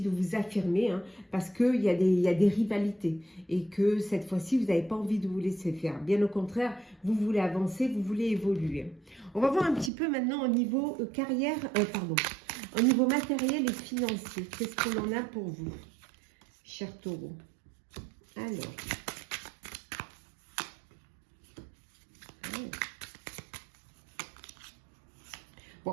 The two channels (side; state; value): left; drops out; at 9.9 s